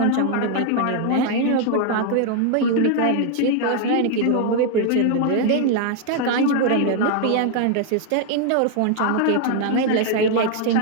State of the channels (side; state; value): both; different; correlation 0.00